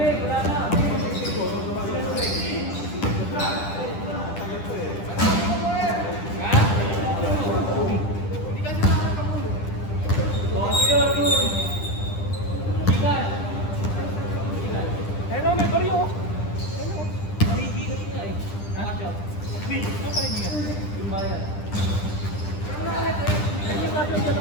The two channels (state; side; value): late; right; 10 ms